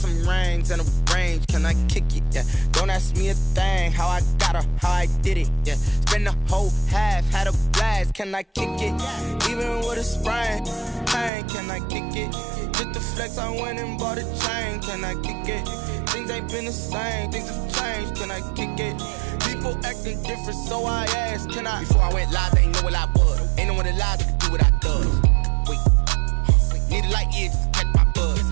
rings and a range. Can I kick it? Yeah. Don't ask me a thing. How I got her, how I did it. Yeah. Spend the whole half, had a blast. Can I kick it? Even with a sprain, pain. Can I kick it? Just the flex, I went and bought a chain. Can I kick it? Things ain't been the same. Things have changed. Can I kick it? People acting different, so I asked, can I? Before I went live, they ain't know what I was. Ain't no one alive that could do what I does. Wait. Need a light here just to catch my buzz.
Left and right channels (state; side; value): drops out; left; at 11.3 s